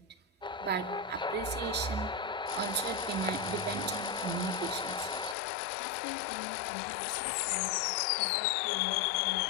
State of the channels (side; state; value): right; drops out; at 5.4 s